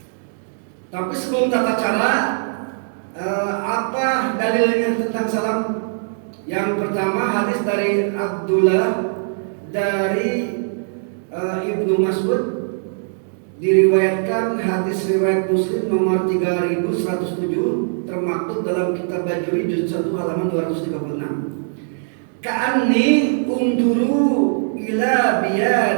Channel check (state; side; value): silent; left; digital silence